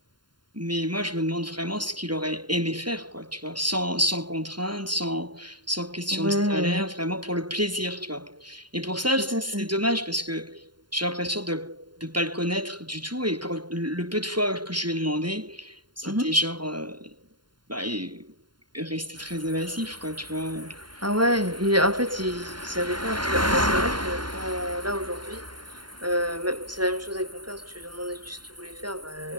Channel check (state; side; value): late; left; 0.71 ms